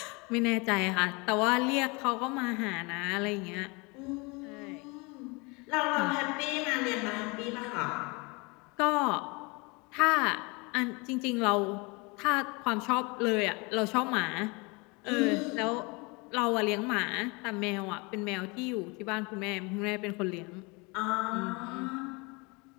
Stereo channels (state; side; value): quieter; right; 28.0 dB